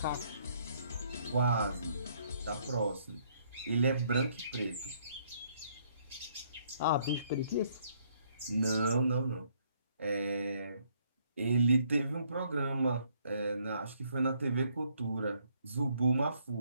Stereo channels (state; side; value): inverted; both; correlation -0.68